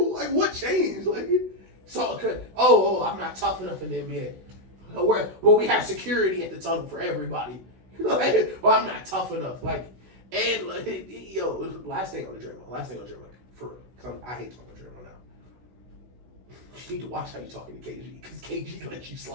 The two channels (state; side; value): late; left; 16 ms